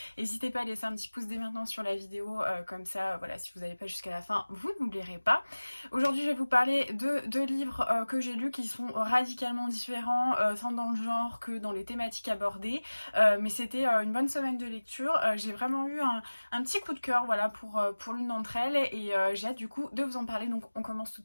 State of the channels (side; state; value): both; inverted; correlation -1.00